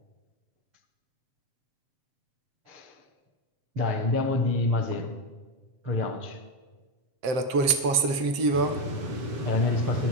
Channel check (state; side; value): late; left; 7.6 ms